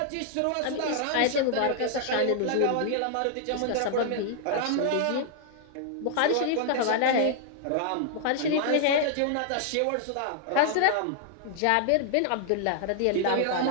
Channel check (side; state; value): both; different; correlation -0.01